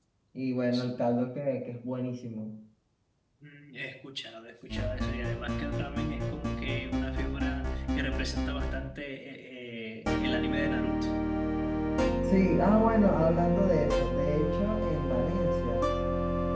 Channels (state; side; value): identical; both; correlation 1.00